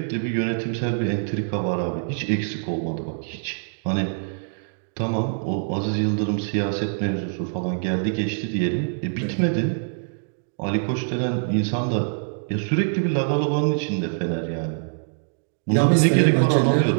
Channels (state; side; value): silent; left; digital silence